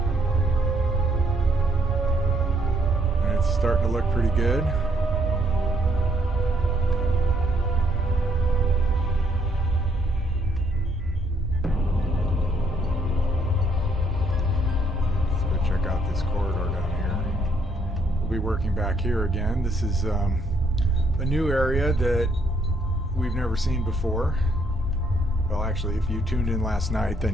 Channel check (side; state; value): both; normal; correlation 0.69